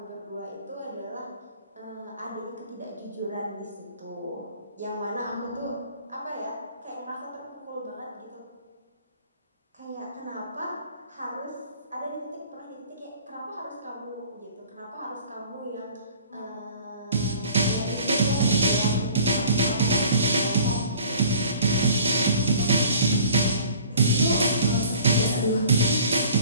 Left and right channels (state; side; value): inverted; both; correlation -0.49